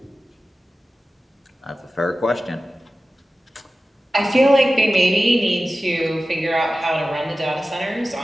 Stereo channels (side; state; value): both; normal; correlation 0.95